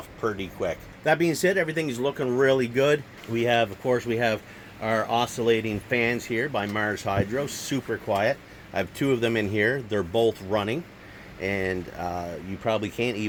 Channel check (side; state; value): both; identical; correlation 1.00